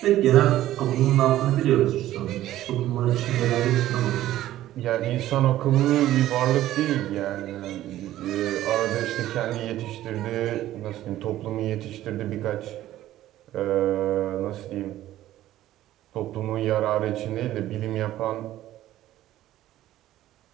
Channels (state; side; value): quieter; left; 14.0 dB